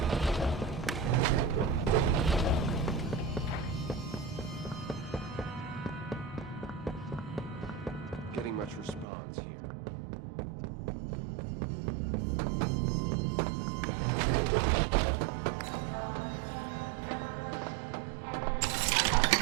Getting much response here.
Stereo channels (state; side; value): drops out; left; at 9.1 s